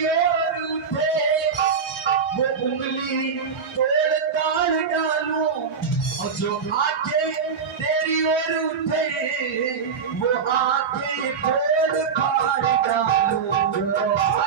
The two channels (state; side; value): quieter; left; 6.0 dB